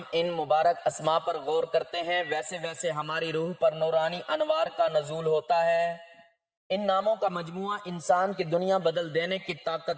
ان مبارک اسماء پر غور کرتے ہیں ویسے ویسے ہماری روح پر نورانی انوار کا نزول ہوتا ہے۔ ان ناموں کا مجموعہ انسان کی دنیا بدل دینے کی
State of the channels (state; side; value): identical; both; correlation 1.00